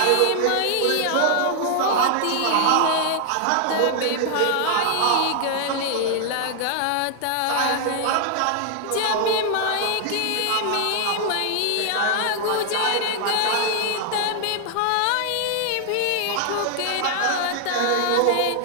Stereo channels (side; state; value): both; different; correlation 0.00